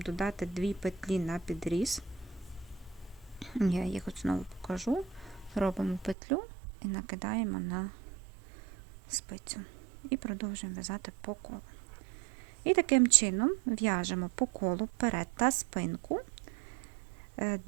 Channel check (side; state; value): left; drops out; at 6.2 s